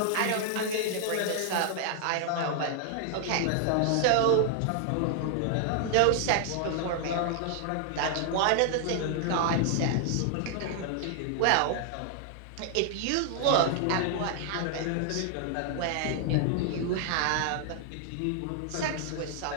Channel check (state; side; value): different; both; correlation 0.00